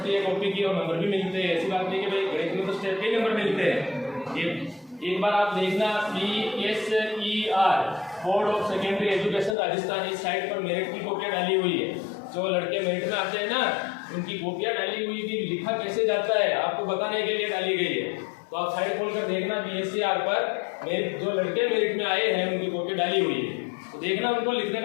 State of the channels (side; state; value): right; drops out; at 9.6 s